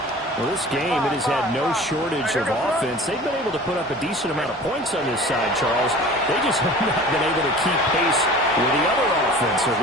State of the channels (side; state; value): both; normal; correlation 0.42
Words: Well, this game, it has had no shortage of offense. They've been able to put up a decent amount of points on this side, Charles. They just have not been able to keep pace with the other offense they're